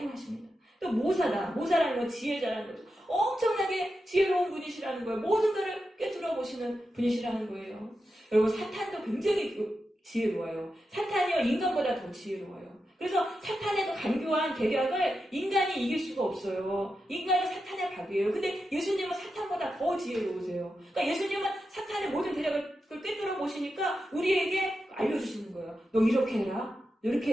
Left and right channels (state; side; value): normal; both; correlation 0.89